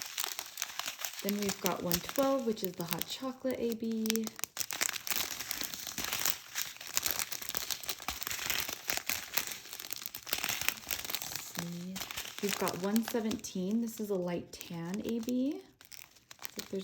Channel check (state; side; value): identical; both; correlation 1.00